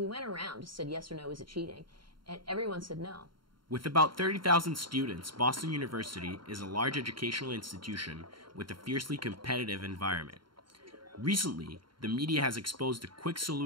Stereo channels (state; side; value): late; left; 0.73 ms